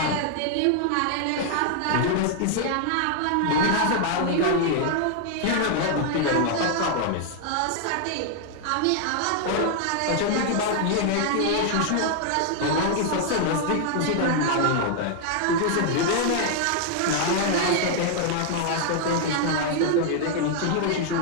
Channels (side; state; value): both; different; correlation 0.00